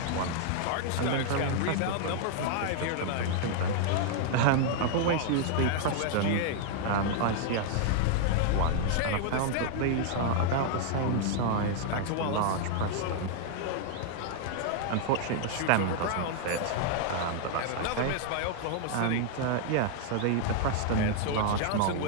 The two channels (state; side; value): different; both; correlation 0.00